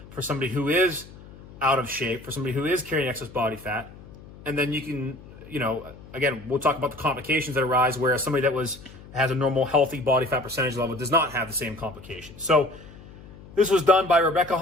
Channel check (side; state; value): left; noise; hum, 18 dB below the sound